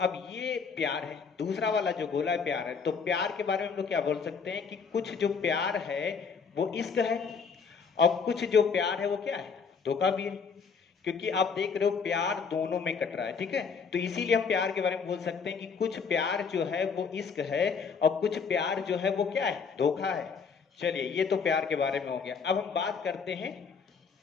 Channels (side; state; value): right; quieter; 5.8 dB